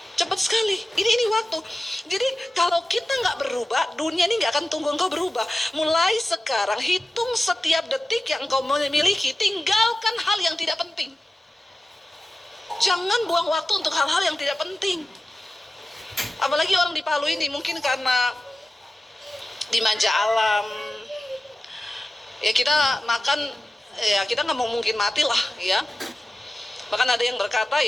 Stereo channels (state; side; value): normal; both; correlation 0.95